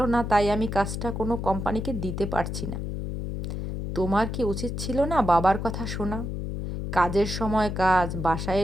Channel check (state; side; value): noise; left; hum, 4 dB below the sound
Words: না, তাই আমি কাজটা কোনো কোম্পানিকে দিতে পারছি না। তোমার কি উচিত ছিল না বাবার কথা শোনা? কাজের সময় কাজ, বাসায়